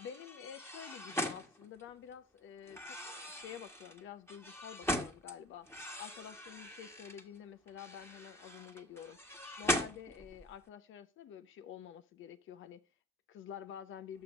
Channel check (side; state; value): both; normal; correlation 0.41